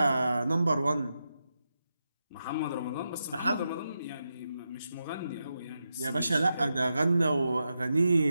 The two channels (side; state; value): both; inverted; correlation -0.88